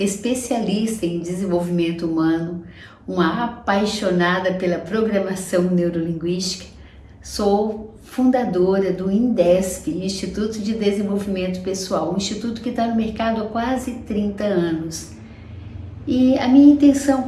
em desenvolvimento humano, uma apaixonada pela programação neurolinguística. Sou fundadora do INDESP, Instituto de Desenvolvimento Pessoal, um instituto que está no mercado há quase 30 anos. E a minha intenção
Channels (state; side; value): identical; both; correlation 1.00